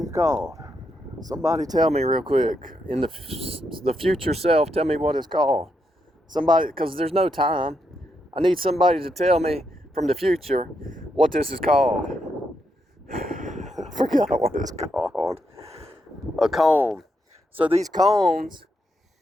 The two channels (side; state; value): both; normal; correlation 0.81